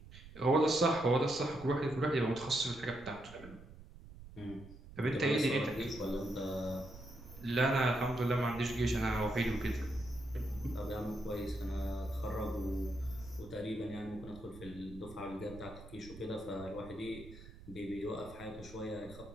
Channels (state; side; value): noise; right; rumble, 17 dB below the sound